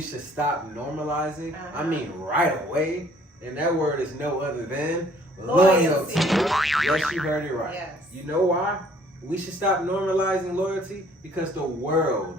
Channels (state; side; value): normal; both; correlation 0.58